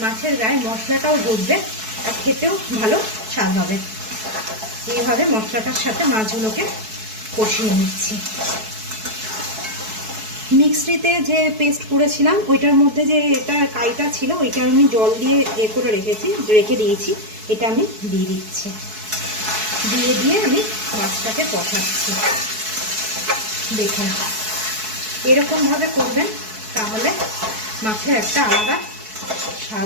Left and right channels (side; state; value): left; late; 4.6 ms